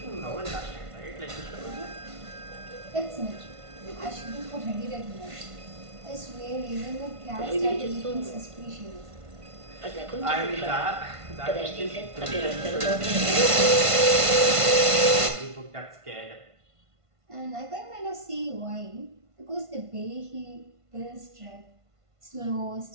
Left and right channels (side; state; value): left; late; 1.5 ms